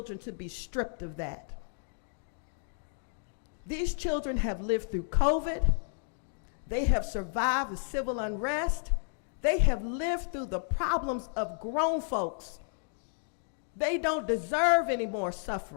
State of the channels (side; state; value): right; silent; digital silence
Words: to be stripped of that. These children have lived through COVID. They have survived the civil unrest. They have lived through the problems of grown folks. They don't deserve any more